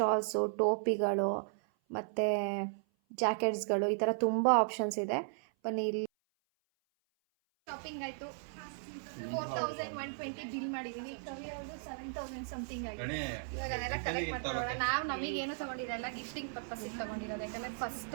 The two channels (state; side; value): silent; left; 54 dB below the other